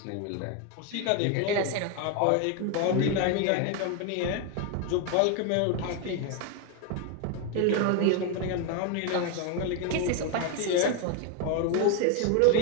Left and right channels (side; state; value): both; different; correlation 0.01